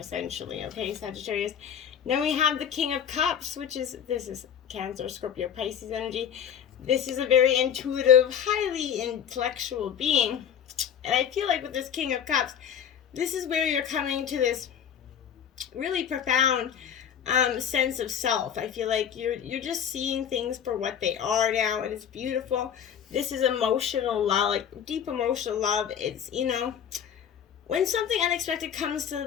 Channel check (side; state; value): right; quieter; 8.6 dB